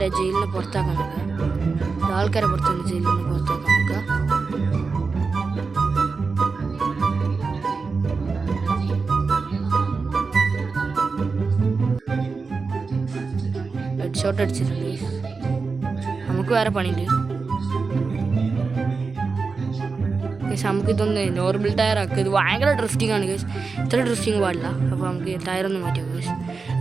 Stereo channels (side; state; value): left; quieter; 4.5 dB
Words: ജയിലിൽ നിന്ന് പുറത്താക്കാൻ നോക്കുക. ആൾക്കാരെ പുറത്തുനിന്ന് ജയിലിൽ നിന്ന് പുറത്താക്കാൻ നോക്കുക. ഹെഡ് ഷോട്ട് അടിച്ചിട്ടുണ്ട്. നമുക്ക് വേറെ പണിയുണ്ട്. നമുക്ക് ഇതൊന്ന് നോർമൽ ടയർ ആക്കുക. ഇത് ഭയങ്കര ഡ്രിഫ്റ്റിംഗ് ആണ് കേസ്. ഇത്ര ഡ്രിഫ്റ്റിംഗ് പാടില്ല. അപ്പോൾ നമുക്ക് ടയറൊന്നും മാറ്റിയാൽ കേസ്.